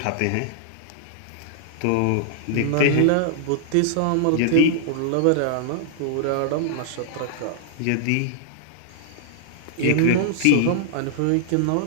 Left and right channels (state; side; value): different; both; correlation -0.01